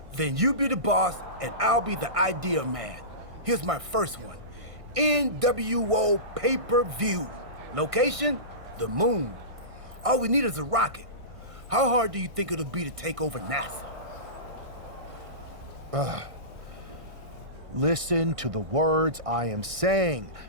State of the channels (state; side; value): late; left; 1.6 ms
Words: Then you be the boss, and I'll be the idea man. Here's my first one. NWO pay-per-view. Location? The moon. All we need is a rocket. How hard do you think it'll be to take over NASA? Listen to the words I am saying.